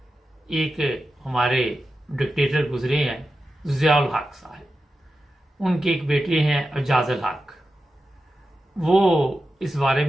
एक हमारे डिक्टेटर गुजरे हैं, ज़ियाउल हक साहब। उनके एक बेटे हैं एजाजुल हक। वो इस बारे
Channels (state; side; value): normal; both; correlation 0.91